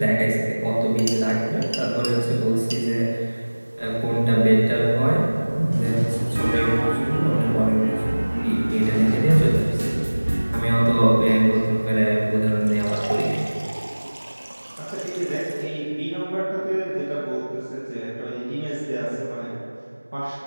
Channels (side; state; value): both; inverted; correlation -1.00